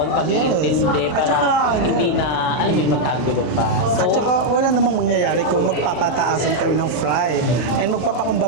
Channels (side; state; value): right; late; 40 ms